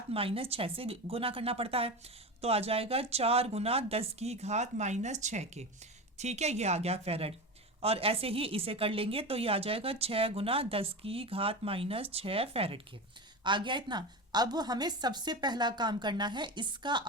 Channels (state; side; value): normal; both; correlation 0.24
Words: -6 से गुना करना पड़ता है। तो आ जाएगा 4 गुना 10 की घात -6 के। ठीक है, ये आ गया फैरड, और ऐसे ही इसे कर लेंगे तो ये आ जाएगा 6 गुना 10 की घात -6 फैरड के। आ गया इतना। अब हमें सबसे पहला काम करना है, इसका